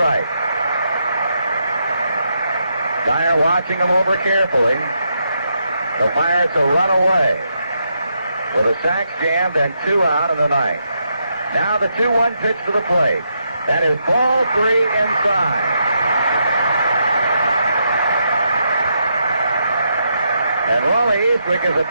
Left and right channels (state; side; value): inverted; both; correlation -0.81